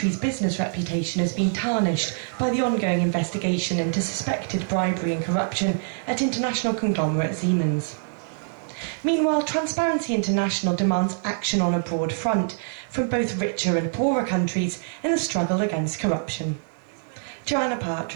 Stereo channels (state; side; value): silent; left; digital silence